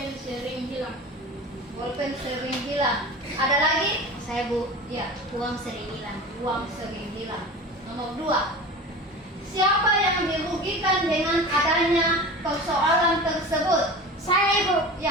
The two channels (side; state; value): both; normal; correlation 0.34